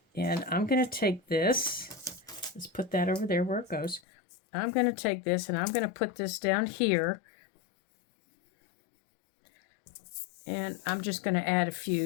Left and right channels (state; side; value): drops out; right; at 4.0 s